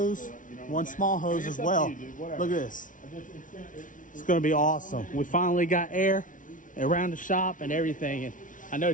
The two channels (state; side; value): late; right; 0.38 ms